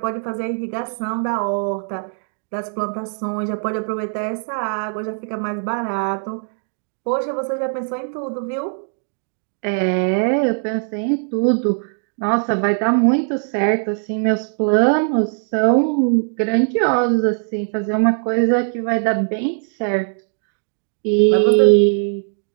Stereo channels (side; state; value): left; silent; 59 dB below the other